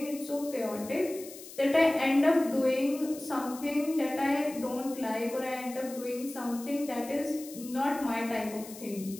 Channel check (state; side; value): noise; left; hiss, 15 dB below the sound